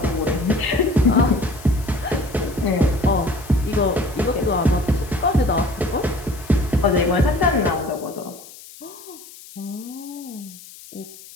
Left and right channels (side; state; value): left; noise; hiss, 19 dB below the sound